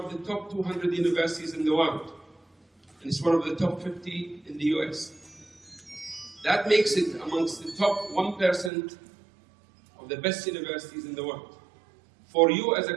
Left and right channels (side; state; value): left; drops out; at 8.7 s